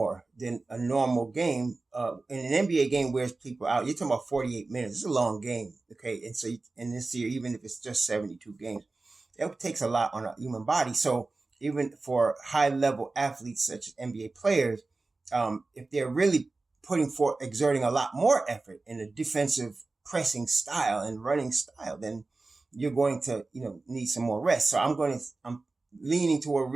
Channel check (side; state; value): left; quieter; 3.5 dB